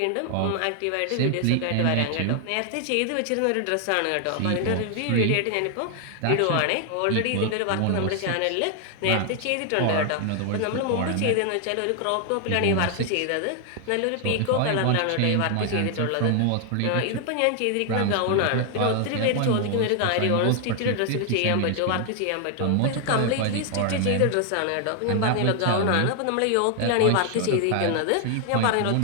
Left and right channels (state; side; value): different; both; correlation 0.00